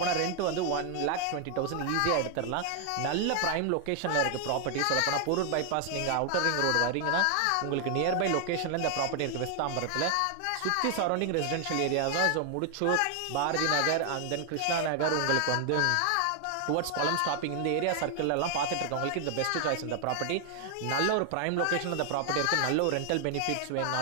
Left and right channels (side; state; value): both; different; correlation 0.00